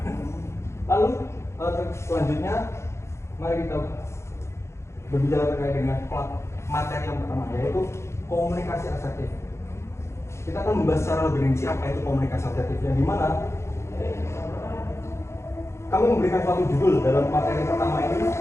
Lalu selanjutnya mari kita berbicara terkait dengan materi yang pertama yaitu komunikasi asertif. Kita akan membahas secara lebih rinci apa itu komunikasi asertif yang dimana kami memberikan suatu judul dalam materi pertama ini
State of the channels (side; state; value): right; late; 0.13 ms